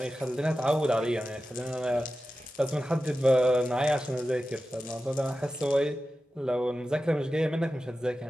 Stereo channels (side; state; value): both; normal; correlation 0.93